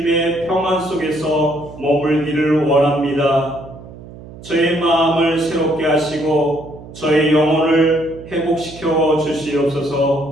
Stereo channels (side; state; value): right; noise; hum, 17 dB below the sound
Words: 평안 속에서 머물기를 원합니다. 저의 마음을 새롭게 하시고 저의 영혼을 회복시켜